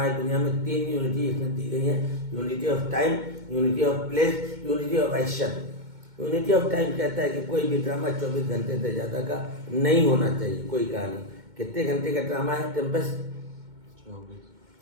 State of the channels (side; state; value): left; late; 2.2 ms